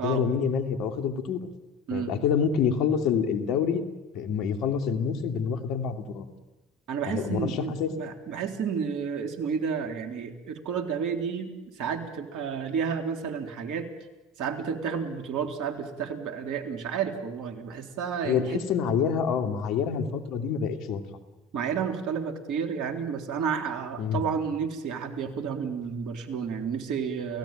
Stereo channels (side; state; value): both; normal; correlation 0.31